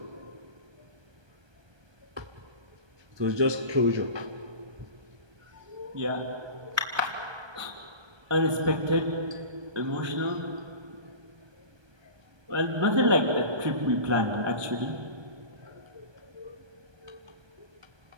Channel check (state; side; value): late; left; 1.2 ms